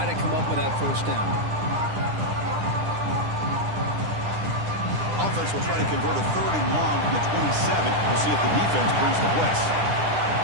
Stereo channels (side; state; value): left; late; 9.9 ms